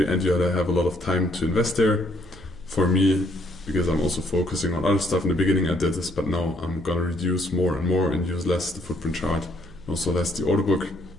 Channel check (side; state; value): right; noise; hum, 20 dB below the sound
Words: and you have a lot of time to invest there. For me, because I'm also focusing on other stuff, in the beginning I did this, but now I'm gonna reduce more and more and use less the footprint chart, and also less the order book,